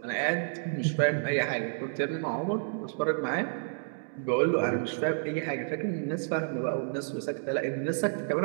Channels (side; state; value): left; silent; digital silence